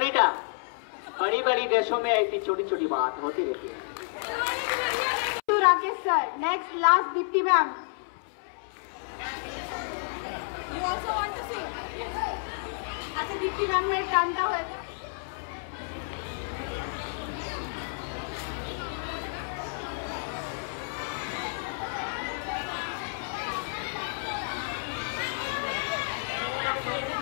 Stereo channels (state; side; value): silent; right; 58 dB below the other